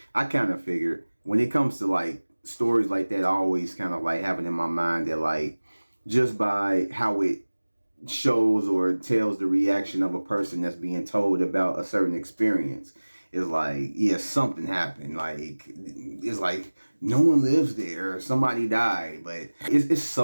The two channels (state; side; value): inverted; both; correlation -1.00